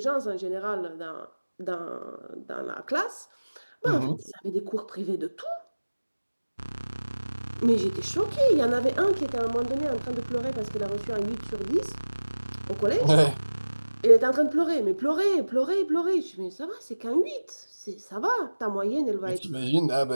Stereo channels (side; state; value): both; inverted; correlation -1.00